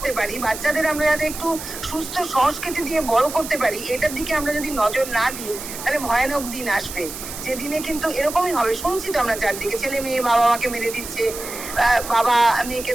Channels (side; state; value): right; noise; hiss, 10 dB below the sound